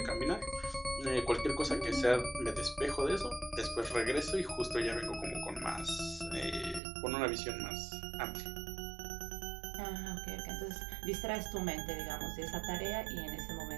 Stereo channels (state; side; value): drops out; left; at 6.8 s